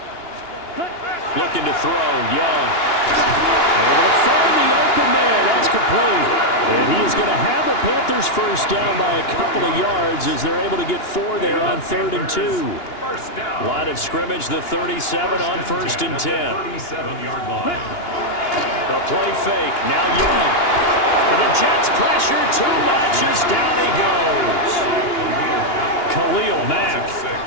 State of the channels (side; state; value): right; late; 2.9 ms